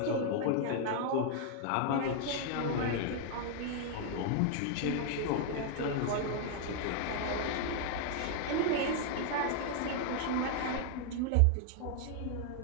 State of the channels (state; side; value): different; both; correlation 0.00